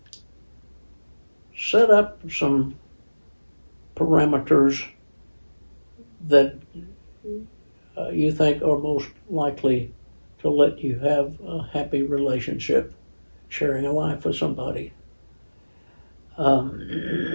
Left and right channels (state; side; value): inverted; both; correlation -1.00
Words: set up some parameters that you think are most likely to let you have a happy relationship, sharing a life with somebody.